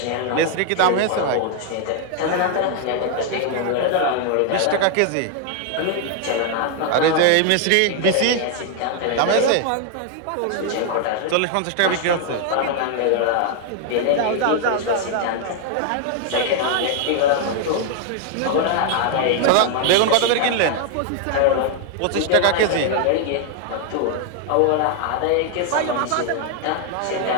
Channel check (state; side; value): different; both; correlation 0.00